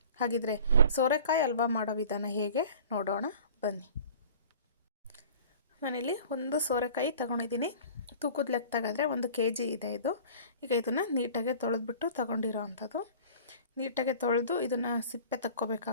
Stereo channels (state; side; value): inverted; both; correlation -0.45